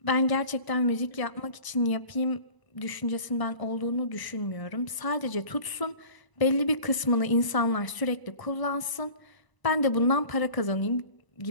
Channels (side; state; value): right; late; 1.0 ms